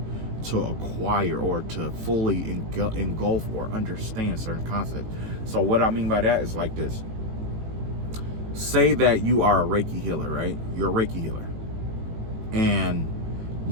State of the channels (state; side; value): late; left; 18 ms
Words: to acquire or to fully engulf or understand certain concepts. So what I mean by that is like this. Say that you are a Reiki healer, right? You're a Reiki healer. And